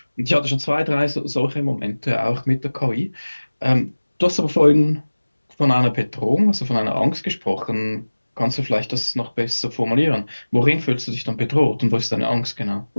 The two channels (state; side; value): inverted; both; correlation -1.00